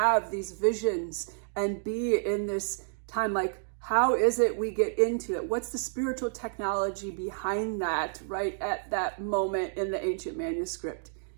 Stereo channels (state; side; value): silent; left; digital silence